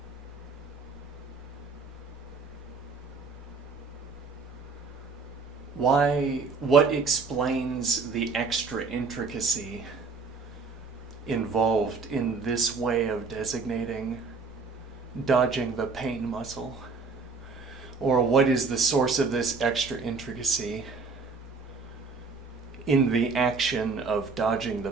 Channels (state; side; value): quieter; left; 4.5 dB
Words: What explains the extra intricacy involved in this way of designating dodging the pain muscle? Or what is the source of this extra intricacy in the action of dodging the